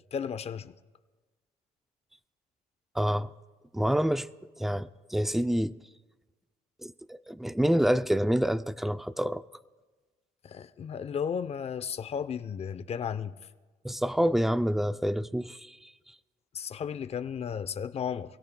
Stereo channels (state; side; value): normal; both; correlation 0.90